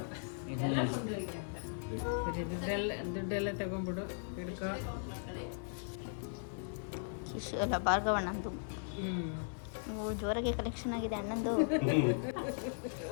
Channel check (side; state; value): right; silent; 53 dB below the other